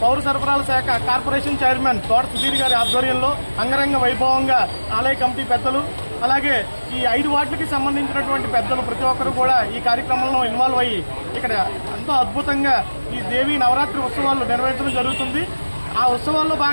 పౌర సరఫరాల శాఖ కార్పొరేషన్ చైర్మన్ తోట సుధీర్ గారి ఆధ్వర్యంలో అంగరంగ వైభవంగా ఆలయ కమిటీ పెద్దలు అలాగే ఈ 5 వార్డులకి సంబంధించినటువంటి పెద్దలు ప్రతి ఒక్కరు కూడా ఈ కార్యక్రమంలో ఇన్వాల్వ్ అయ్యి ఇక్కడ ఎంతో అద్భుతంగా ఈ దేవి నవరాత్రి ఉత్సవాలు నిర్వహించడం జరుగుతుంది. ఆ ఉత్సవాల్లో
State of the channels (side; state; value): both; inverted; correlation -1.00